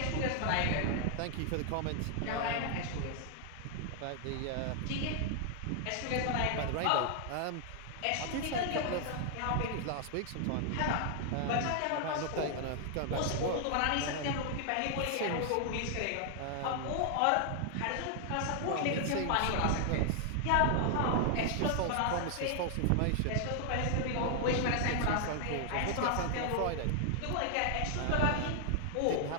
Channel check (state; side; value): different; both; correlation 0.00